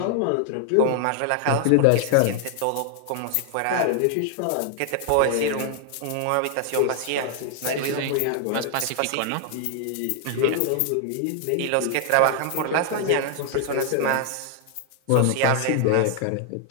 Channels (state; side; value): different; both; correlation 0.00